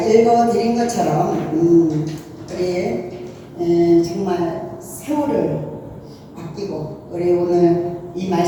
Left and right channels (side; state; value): both; identical; correlation 1.00